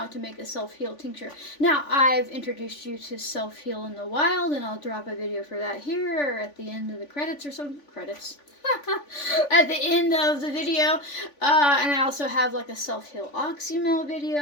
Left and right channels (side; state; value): right; late; 3.5 ms